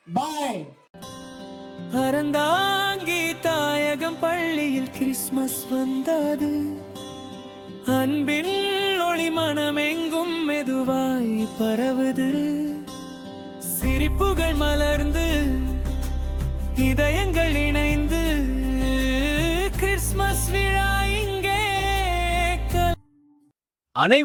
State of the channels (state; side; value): identical; both; correlation 1.00